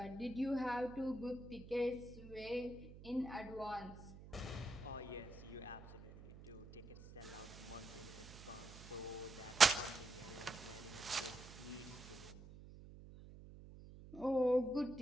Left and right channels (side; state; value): right; noise; hum, 15 dB below the sound